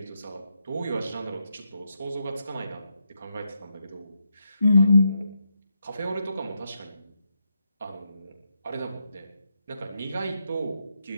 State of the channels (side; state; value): both; inverted; correlation -0.82